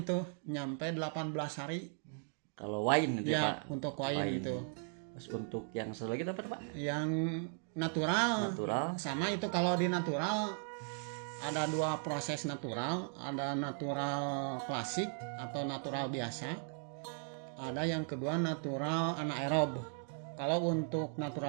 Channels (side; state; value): left; silent; 53 dB below the other